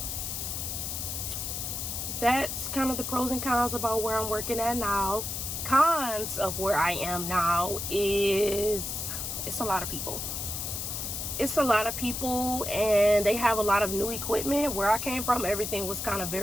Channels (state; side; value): noise; left; hiss, 4 dB below the sound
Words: that's kind of the pros and cons about where I'm working at now. Cons of where I am now is it's a lot of people. It's a lot of people, and they have a lot of new equipment. Where I came from, everything was kind of